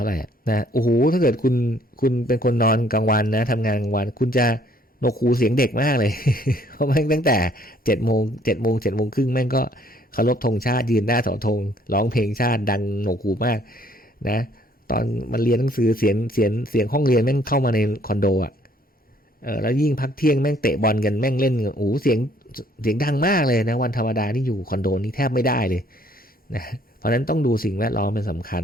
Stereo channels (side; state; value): both; normal; correlation 0.62